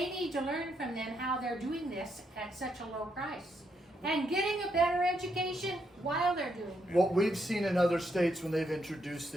to learn from them how they're doing this at such a low price. And getting a better education while they're doing it. What we've seen in other states when they've introduced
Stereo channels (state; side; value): normal; both; correlation 0.78